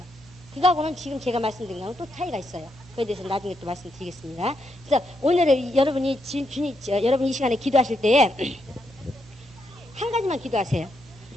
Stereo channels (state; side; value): normal; both; correlation 0.80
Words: 그거하고는 지금 제가 말씀드린 거하고 또 차이가 있어요. 그에 대해서 나중에 또 말씀드리겠습니다. 그래서 오늘은 여러분이 여러분 이 시간에 기도하실 때에 한 가지만 기도하세요.